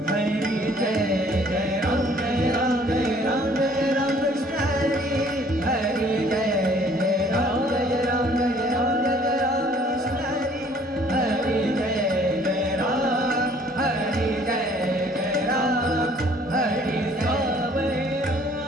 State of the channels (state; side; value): normal; both; correlation 0.57